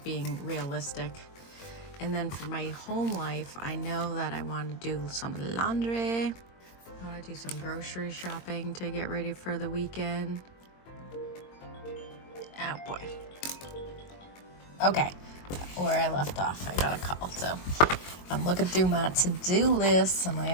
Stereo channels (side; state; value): right; late; 22 ms